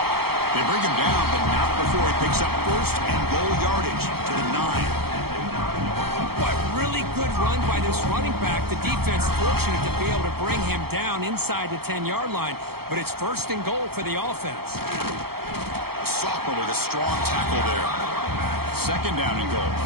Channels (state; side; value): late; left; 0.95 ms